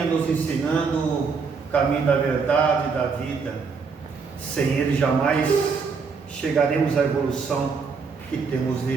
nos ensinando o caminho da verdade e da vida. Sem Ele jamais chegaremos à evolução que temos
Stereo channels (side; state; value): left; quieter; 5.2 dB